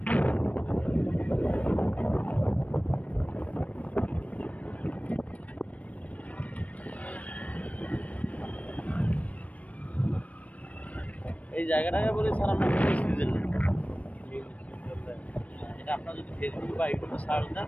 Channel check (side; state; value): right; late; 0.068 ms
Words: এই জায়গাটাকে বলি স্যার আমরা মিনি সুইজারল্যান্ড। এটা আপনার যদি ফেসবুক বা ইউটিউবে সার্চ দেন